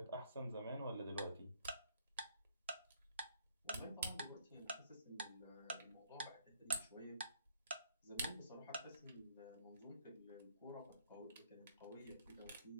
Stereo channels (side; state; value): both; inverted; correlation -0.65